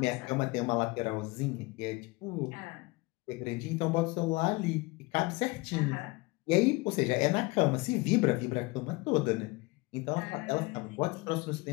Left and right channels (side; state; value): right; quieter; 23.9 dB